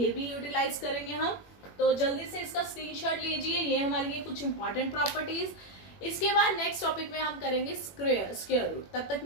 भी यूटिलाइज करेंगे हम। तो जल्दी से इसका स्क्रीनशॉट लीजिए, ये हमारे लिए कुछ इंपॉर्टेंट प्रॉपर्टीज। इसके बाद नेक्स्ट टॉपिक में हम करेंगे स्क्वायर रूट। तब तक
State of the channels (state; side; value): late; right; 21 ms